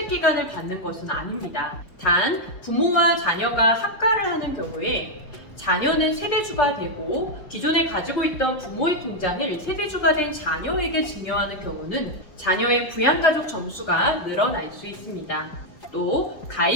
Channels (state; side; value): late; right; 5.0 ms